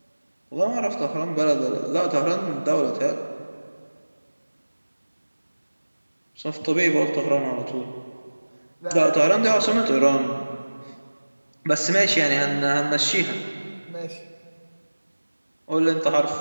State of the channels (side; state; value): both; inverted; correlation -1.00